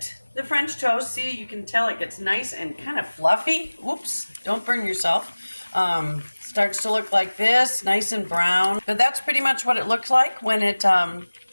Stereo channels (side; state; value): both; inverted; correlation -1.00